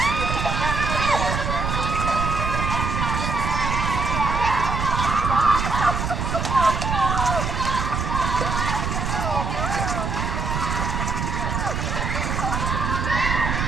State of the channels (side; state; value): right; noise; rumble, 1 dB below the sound